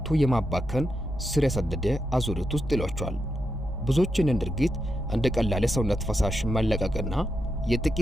የማባከን ስር የሰደደ አዙሪት ውስጥ ይሏቸዋል። ብዙዎችን ድርጊት እንደ ቀላል የሰውነት ፈሳሽ መለቀቅና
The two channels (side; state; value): right; noise; rumble, 15 dB below the sound